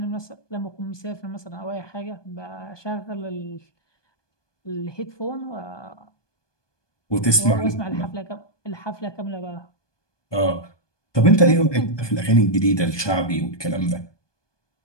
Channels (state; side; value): late; right; 1.2 ms